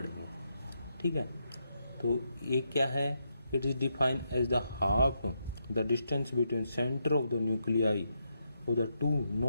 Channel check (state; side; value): inverted; both; correlation -0.82